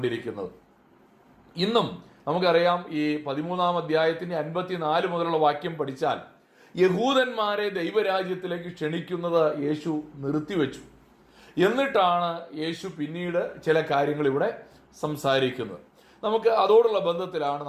ഇന്നും നമുക്കറിയാം, ഈ 13-ാം അധ്യായത്തിൻ്റെ 54 മുതലുള്ള വാക്യം പഠിച്ചാൽ യഹൂദന്മാരെ ദൈവരാജ്യത്തിലേക്ക് ക്ഷണിക്കുന്നത് യേശു നിർത്തിവെച്ചു. എന്നിട്ടാണ് യേശു പിന്നീട് ചില കാര്യങ്ങൾ ഇവിടെ സംസാരിക്കുന്നത്. നമുക്ക് അതോടുള്ള ബന്ധത്തിലാണ്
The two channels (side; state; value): both; identical; correlation 1.00